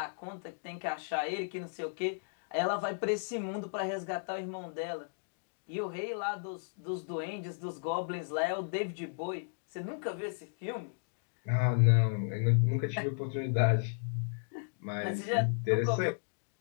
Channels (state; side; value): silent; right; digital silence